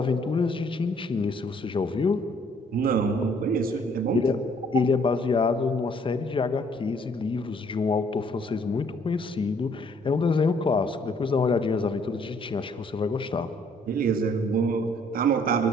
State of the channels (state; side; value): normal; both; correlation 0.63